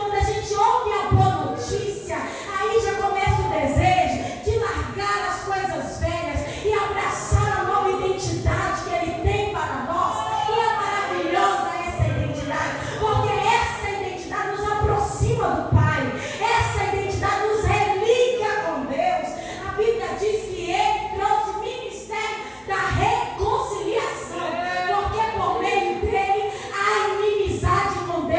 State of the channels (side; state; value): both; identical; correlation 1.00